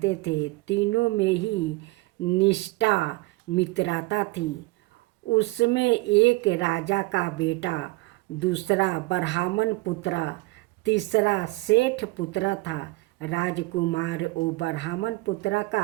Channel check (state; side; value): quieter; left; 22.4 dB